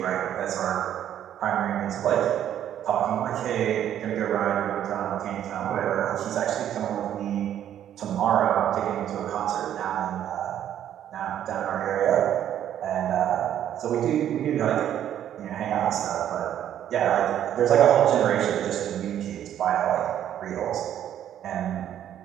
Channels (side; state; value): left; quieter; 10.7 dB